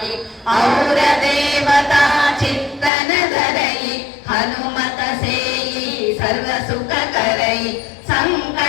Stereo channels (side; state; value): right; drops out; at 2.9 s